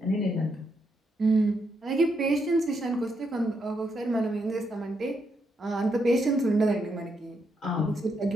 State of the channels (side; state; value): both; normal; correlation 0.79